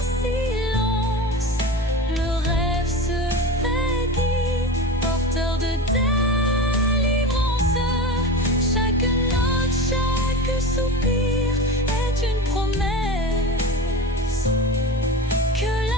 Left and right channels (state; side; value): normal; both; correlation 0.29